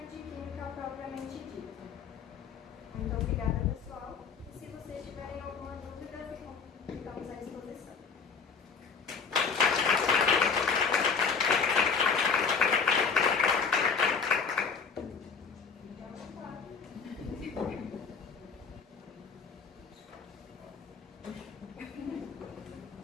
de Química propriamente dito. Muito obrigada, pessoal. E se vocês tiverem alguma dúvida, ficamos à disposição.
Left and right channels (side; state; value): right; quieter; 5.6 dB